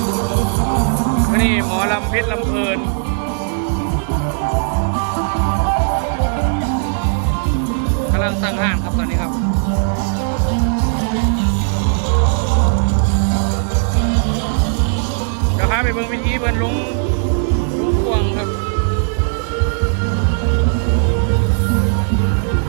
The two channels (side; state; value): left; silent; digital silence